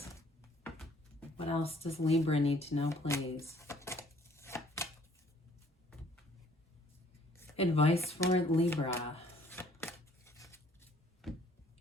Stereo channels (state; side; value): normal; both; correlation 0.59